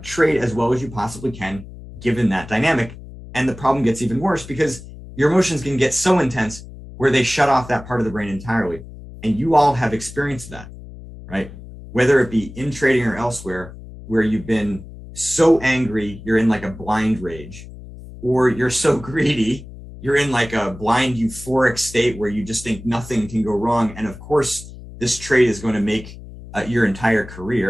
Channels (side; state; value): left; noise; hum, 15 dB below the sound